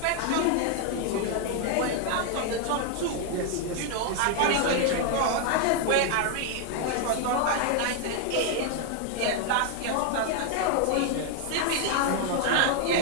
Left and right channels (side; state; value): both; different; correlation 0.00